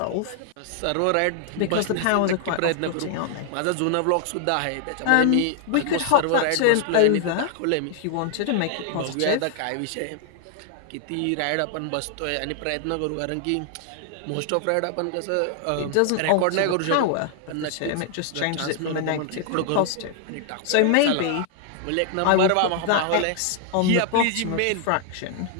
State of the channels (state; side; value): different; both; correlation 0.00